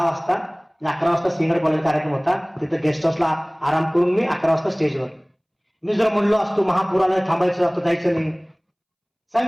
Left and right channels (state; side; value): identical; both; correlation 1.00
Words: वाजता. 11 वाजता सिंगड कॉलेज कार्यक्रम होता. तिथं गेस्ट हाऊसला आराम करून मी 11 वाजता स्टेजवर. मी जर म्हणलो असतो महापुराला थांबायचं असतं, जायचं नाही.